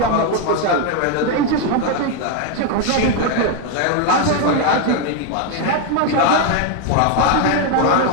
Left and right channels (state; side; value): different; both; correlation 0.01